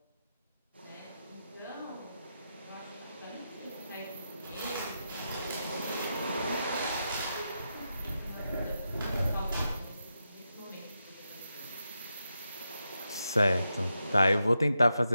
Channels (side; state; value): both; inverted; correlation -0.87